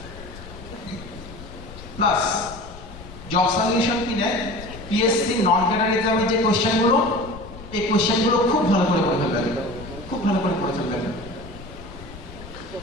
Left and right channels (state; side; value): noise; left; rumble, 15 dB below the sound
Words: প্লাস জব সলিউশন কিনে পিএসসি নন ক্যাডার এক্সামের যে কোশ্চেনগুলো, এই কোশ্চেনগুলো খুব ভালো করে পড়ে ফেলবেন, খুব ভালো করে পড়ে ফেলবেন।